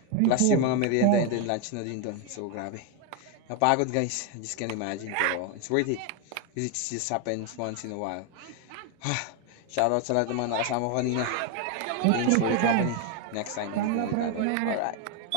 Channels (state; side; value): different; both; correlation 0.01